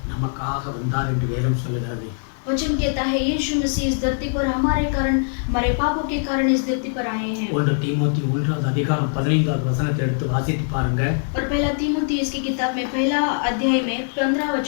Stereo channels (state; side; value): silent; right; 61 dB below the other